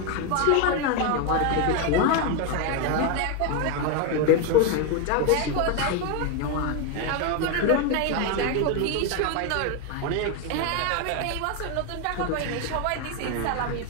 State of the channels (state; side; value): different; both; correlation 0.02